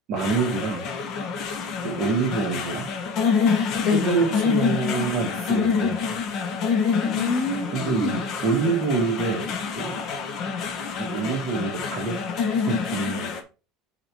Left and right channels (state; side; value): normal; both; correlation 0.33